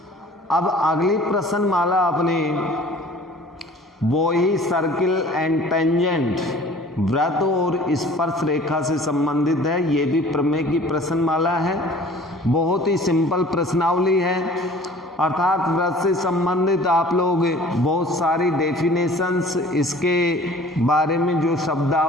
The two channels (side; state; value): both; normal; correlation 0.49